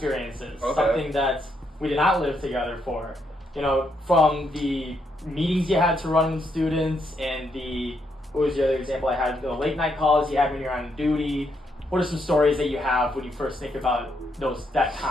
Okay. Something that we did not live together for. From the meetings you had to run with students and what was the other example I had? The late night calls you had when you're on duty. What are some stories that you have when you first think about that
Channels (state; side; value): normal; both; correlation 0.77